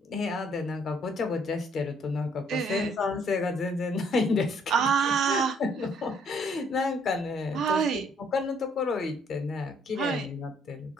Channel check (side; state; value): both; normal; correlation 0.65